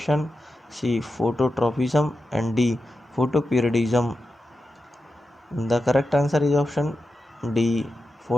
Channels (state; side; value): normal; both; correlation 0.90